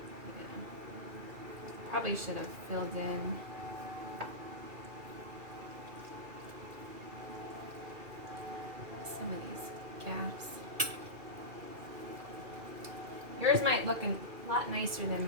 Yeah. Probably should have filled in some of these gaps. Yours might look a lot nicer than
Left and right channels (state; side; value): late; left; 2.4 ms